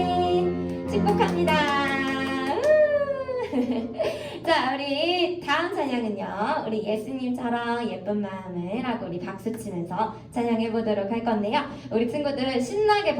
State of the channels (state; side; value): identical; both; correlation 1.00